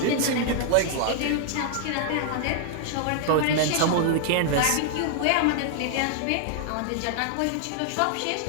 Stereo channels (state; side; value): different; both; correlation 0.00